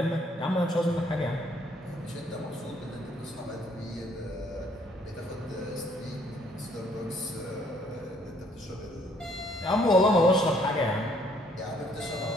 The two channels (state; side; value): normal; both; correlation 0.65